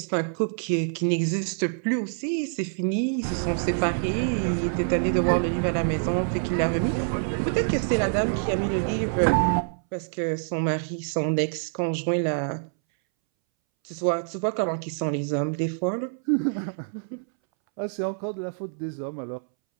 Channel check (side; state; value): left; silent; 61 dB below the other